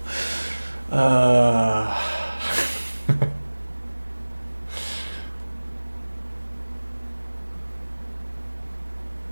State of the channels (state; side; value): inverted; both; correlation -1.00